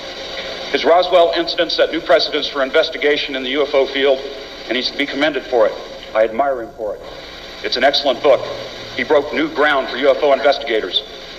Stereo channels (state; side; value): identical; both; correlation 1.00